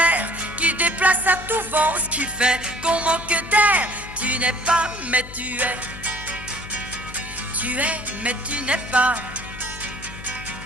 qui déplacent à tout vent, ce qui fait qu'on manque d'air. Tu n'es pas, mais tu es. Tu es, mais tu n'es pas.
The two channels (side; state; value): left; noise; hum, 15 dB below the sound